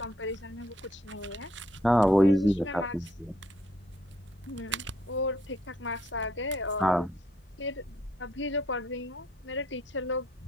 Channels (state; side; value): normal; both; correlation 0.69